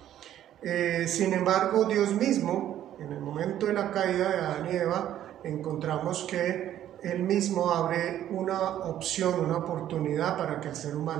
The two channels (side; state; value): left; quieter; 11.7 dB